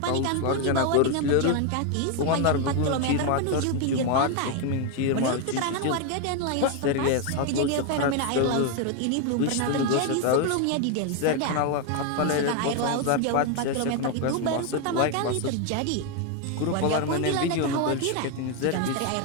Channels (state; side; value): different; both; correlation 0.01